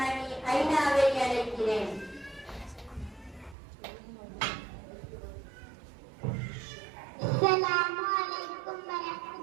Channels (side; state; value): left; drops out; at 3.6 s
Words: ஐனாவை அழைக்கிறேன். அஸ்ஸலாமு அலைக்கும்